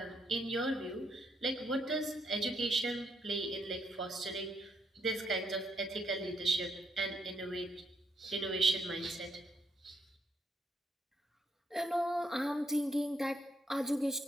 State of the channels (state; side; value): normal; both; correlation 0.76